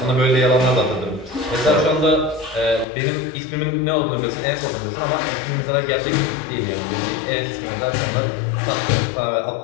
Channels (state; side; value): drops out; right; at 2.9 s